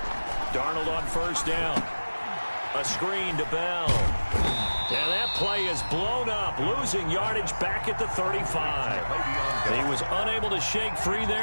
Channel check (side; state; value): both; inverted; correlation -1.00